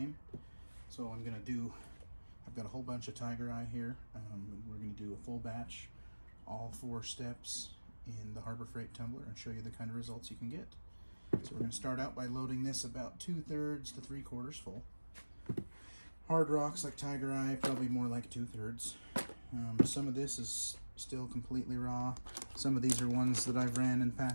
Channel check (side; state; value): both; inverted; correlation -1.00